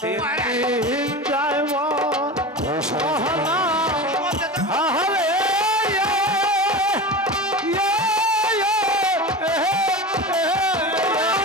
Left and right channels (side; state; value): both; normal; correlation 0.28